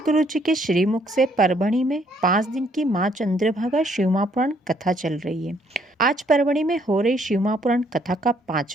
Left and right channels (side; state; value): both; normal; correlation 0.67